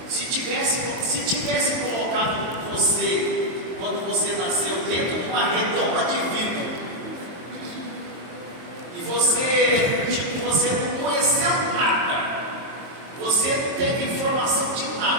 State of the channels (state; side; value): late; left; 22 ms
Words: Se tivesse colocado você, quando você nasceu, dentro de uma redoma de vidro, e você não conheceu nada, você não teve informação de